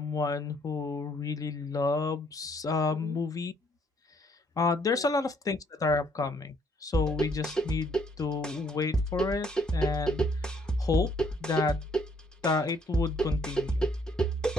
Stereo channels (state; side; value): normal; both; correlation 0.66